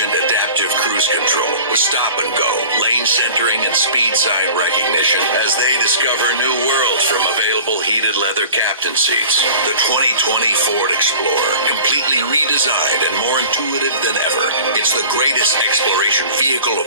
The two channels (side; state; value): both; inverted; correlation -0.41